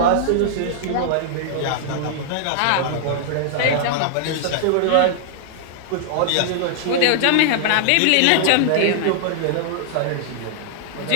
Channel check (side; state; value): both; different; correlation -0.01